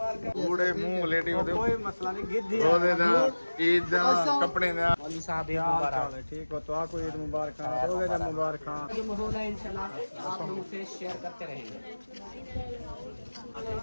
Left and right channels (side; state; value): both; inverted; correlation -1.00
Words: पूरे मुंह लेटी होते कोई मसला नहीं। गिद्दी रोजे दा ईद दा कपड़े दा वाली साहब ईद मुबारक। ठीक हो तो आपको ईद मुबारक, रोजे जब मुबारक। जो माहौल है इंशाल्लाह आप लोगों से शेयर करते रहेंगे।